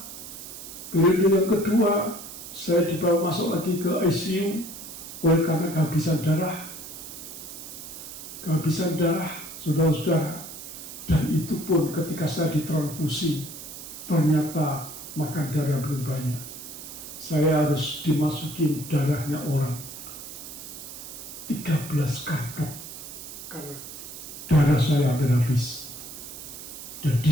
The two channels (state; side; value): noise; right; hiss, 12 dB below the sound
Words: Periode yang kedua, saya dibawa masuk lagi ke ICU oleh karena kehabisan darah. Kehabisan darah, saudara-saudara. Dan itu pun ketika saya ditransfusi, ternyata makan darah belum banyak. Saya harus dimasukin darahnya orang 13 kantong karena darah saya hampir habis. Dan